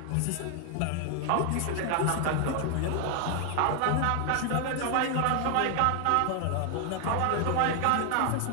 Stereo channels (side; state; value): both; different; correlation 0.00